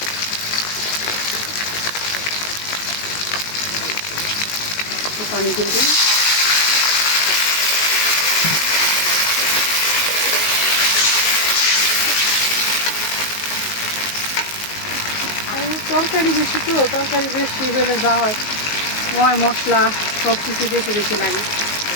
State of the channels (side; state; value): right; late; 19 ms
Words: একটু পানি দিয়ে দিই। তরকারি বেশি তো, তরকারি বেশি হলে যা হয় ময় মশলা সব কিছু বেশি বেশি লাগে।